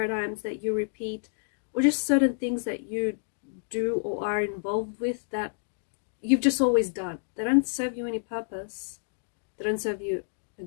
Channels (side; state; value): right; silent; digital silence